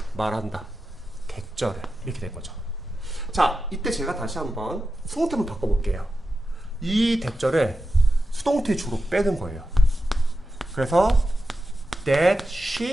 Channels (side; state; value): both; normal; correlation 0.91